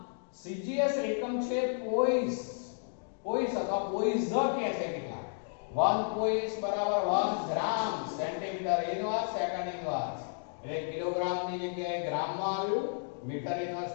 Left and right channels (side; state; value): right; silent; digital silence